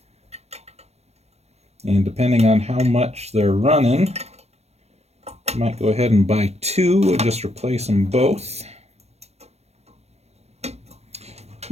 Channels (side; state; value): left; late; 0.31 ms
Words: And depending on how much they're running, I might go ahead and buy two and just replace them both.